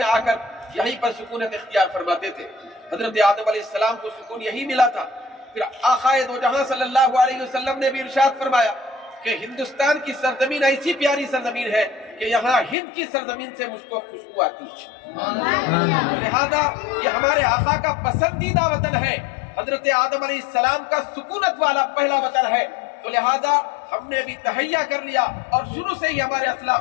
آ کر یہیں پر سکونت اختیار فرماتے تھے۔ حضرت آدم علیہ السلام کو سکون یہی ملا تھا۔ پھر آقا دو جہاں صلی اللہ علیہ وسلم نے بھی ارشاد فرمایا کہ ہندوستان کی سرزمین ایسی پیاری سرزمین ہے کہ یہاں ہند کی سرزمین سے مجھ کو خوشبو آتی ہے۔ لہذا یہ ہمارے آقا کا پسندیدہ وطن ہے، حضرت آدم علیہ السلام کا سکونت والا پہلا وطن ہے۔ تو لہذا ہم نے بھی تہیہ کر لیا اور شروع سے ہی ہمارے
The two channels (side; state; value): right; drops out; at 12.8 s